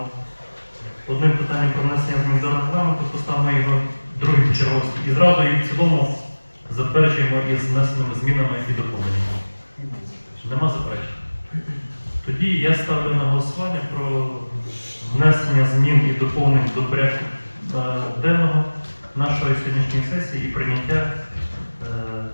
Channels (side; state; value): both; inverted; correlation -1.00